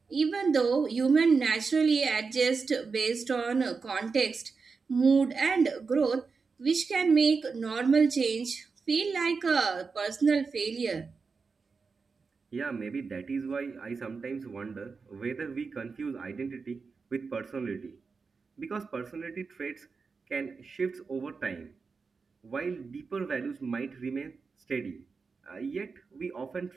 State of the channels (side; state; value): left; quieter; 4.8 dB